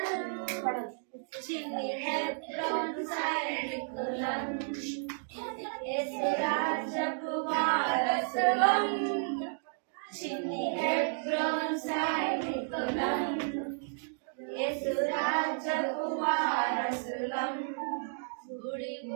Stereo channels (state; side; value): silent; left; digital silence